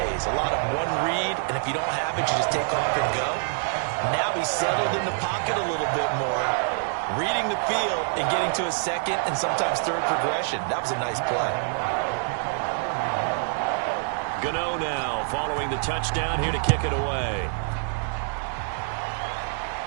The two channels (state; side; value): silent; left; 61 dB below the other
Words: A lot of one read, and if you don't have it, you just take off and go. Now he's settled in the pocket a little bit more, reading the field and getting to a 2nd and sometimes 3rd progression. That was a nice play. Gano now following the touchdown here to kick it away.